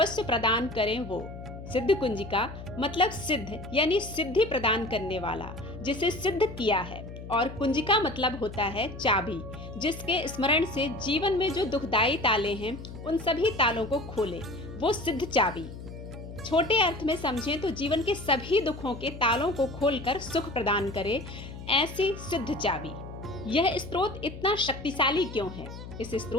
प्रदान करें वो। सिद्धकुंजिका मतलब सिद्ध यानी सिद्धि प्रदान करने वाला, जिसे सिद्ध किया है। और कुंजिका मतलब होता है चाबी, जिसके स्मरण से जीवन में जो दुखदायी ताले हैं उन सभी तालों को खोले, वो सिद्ध चाबी। छोटे अर्थ में समझें तो जीवन के सभी दुखों के तालों को खोलकर सुख प्रदान करे, ऐसी सिद्ध चाबी। यह स्त्रोत इतना शक्तिशाली क्यों है? इस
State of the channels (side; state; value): left; noise; hum, 12 dB below the sound